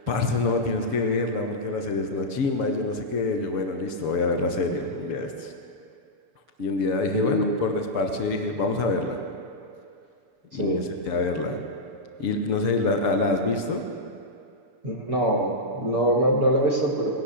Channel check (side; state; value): left; late; 6.9 ms